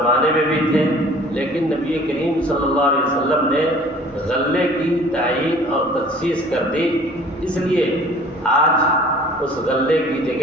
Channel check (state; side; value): normal; both; correlation 0.49